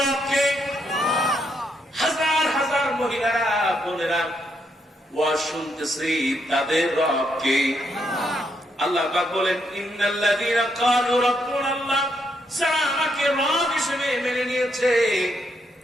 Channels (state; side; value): normal; both; correlation 0.77